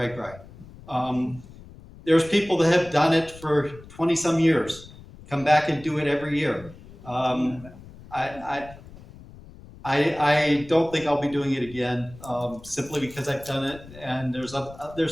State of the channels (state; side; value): noise; left; rumble, 19 dB below the sound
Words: There's people that have done it for 20 some years, come back and do it every year. I don't think I'll be doing it again, simply because I've done it, and there's